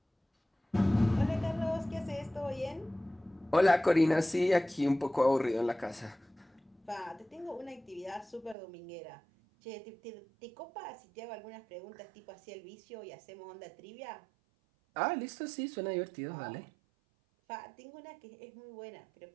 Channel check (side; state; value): left; drops out; at 8.6 s